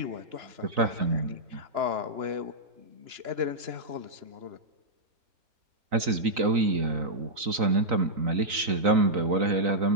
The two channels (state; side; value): late; left; 3.9 ms